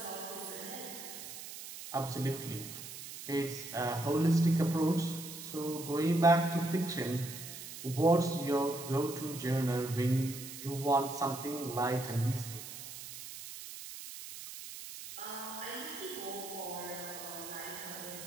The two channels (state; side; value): noise; right; hiss, 11 dB below the sound